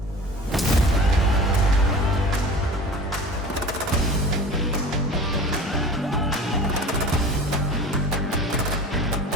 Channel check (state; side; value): normal; both; correlation 0.38